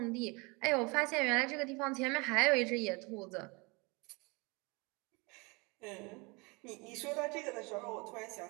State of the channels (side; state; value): left; quieter; 27.9 dB